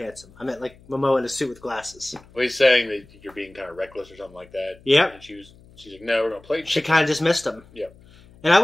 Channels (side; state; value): left; noise; hum, 25 dB below the sound